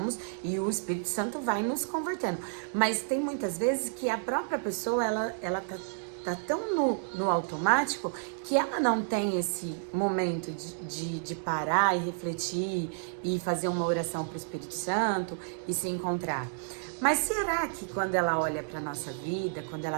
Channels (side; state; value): left; silent; digital silence